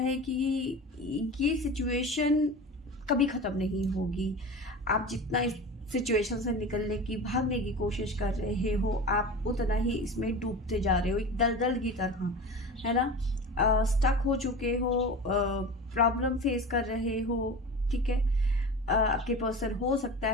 कि ये सिचुएशन कभी ख़त्म नहीं होगी। आप जितना सिचुएशन से निकलने की, भागने की कोशिश कर रहे हो, आप उतना ही इसमें डूबते जा रहे हो, एक दलदल की तरह, है ना। स्टक हो चुके हो, प्रॉब्लम फेस कर रहे हो, ठीक है। आपके पर्सन हो सकता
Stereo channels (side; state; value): both; normal; correlation 0.32